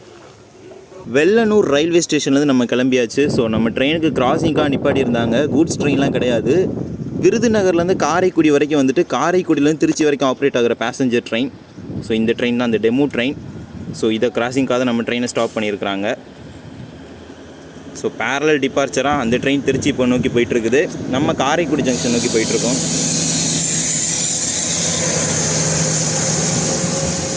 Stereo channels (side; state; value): both; identical; correlation 1.00